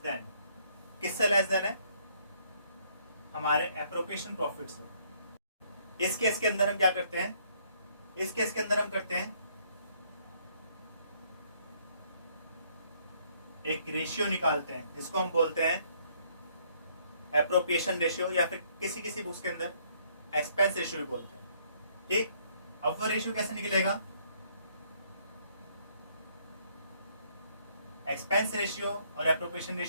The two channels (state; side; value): inverted; both; correlation -0.66